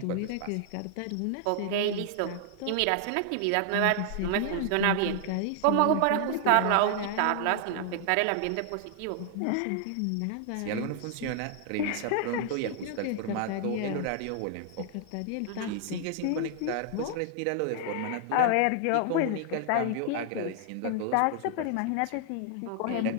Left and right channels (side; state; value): both; different; correlation 0.00